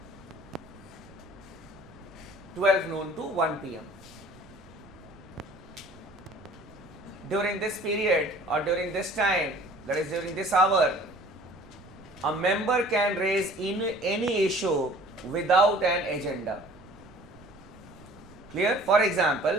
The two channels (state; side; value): noise; right; rumble, 22 dB below the sound